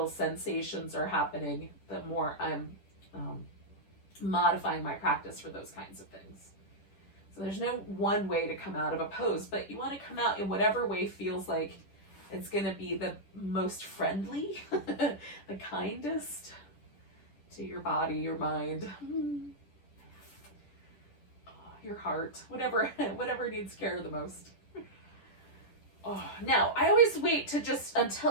sensations are happening, the more I'm modifying my practice for those kinds of things. So there's no one way to come out of a pose, but you want to come out in whatever way feels like it's going to be the most friendly, the kindest to your body, your mind, your heart, whatever needs care the most. Oh, now, I always wait to just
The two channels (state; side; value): late; right; 10 ms